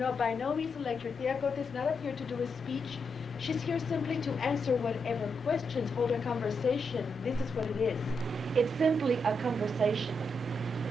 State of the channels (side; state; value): both; normal; correlation 0.83